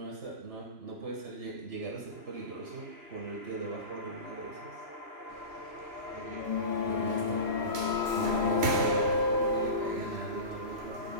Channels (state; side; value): late; left; 3.0 ms